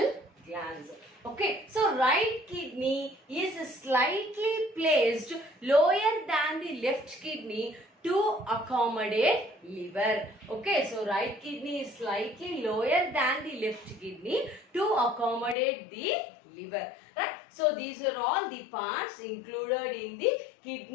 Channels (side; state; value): right; drops out; at 15.6 s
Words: glands. Okay, so right kidney is slightly placed lower than the left kidney to accommodate liver. Okay, so right kidney is slightly lower than the left kidney to accommodate the liver. Right? So these are all the parts included in the